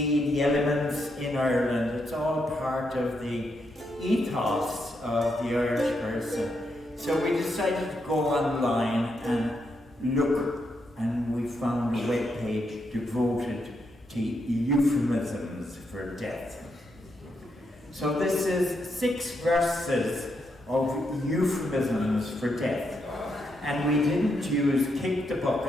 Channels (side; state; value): both; normal; correlation 0.80